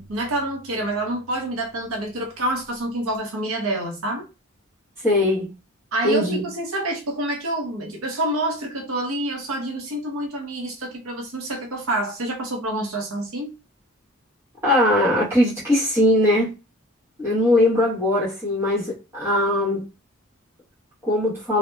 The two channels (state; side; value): normal; both; correlation 0.35